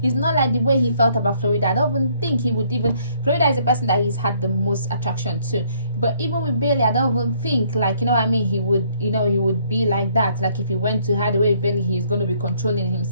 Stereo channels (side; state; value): both; inverted; correlation -0.65